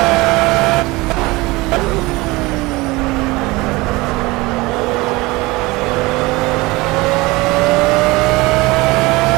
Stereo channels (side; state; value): left; quieter; 22.3 dB